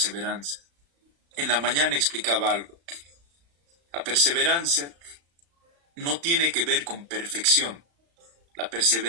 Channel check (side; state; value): left; late; 35 ms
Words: En la mañana explicaba algo. La perseverancia no tiene que ver con perfección. La